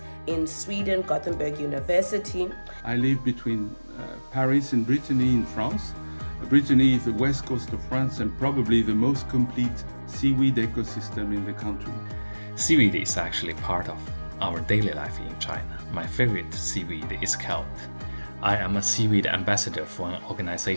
in Sweden, Gothenburg University. I live between Paris and Brittany in France. Brittany is the west coast of France and probably the most complete seaweed ecosystem in the country. Seaweed is actually part of our daily life in China. My favorite seaweed is kelp. I am a seaweed ambassador for an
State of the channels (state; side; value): inverted; both; correlation -1.00